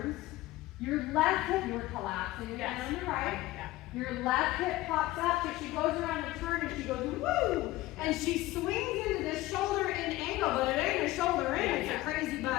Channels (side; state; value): right; quieter; 17.5 dB